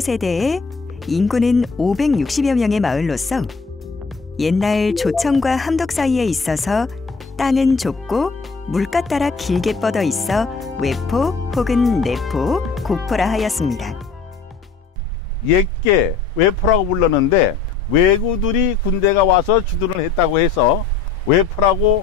세대에 인구는 560여 명의 마을로서 옛날 조청과 함덕 사이에 있어서 땅은 좁고 물가 따라 길게 뻗어 있어 외포 혹은 내포, 곡포라 하였습니다. 옛게 외포라고 불렀는데 왜구들이 군대가 와서 주둔을 했다고 해서 외포라고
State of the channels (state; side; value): quieter; right; 4.8 dB